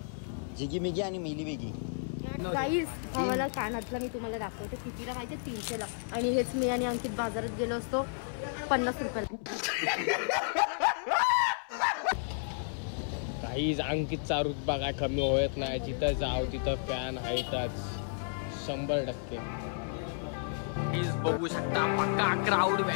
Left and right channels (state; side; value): silent; right; 56 dB below the other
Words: जिगी मिगी आणि मिली बिगी. गाईस भावाला कानातला मी तुम्हाला दाखवते कितीला माहिती, 300 ला. आणि हेच मी आणि अंकित बाजारात गेलो असतो 50 रुपयाला. काहीच अंकितचा रुतबा काय कमी होत नाही. जिथं जाव तिथं फॅन आहेतच 100%. प्लीज बघू शकता पक्का क्राऊड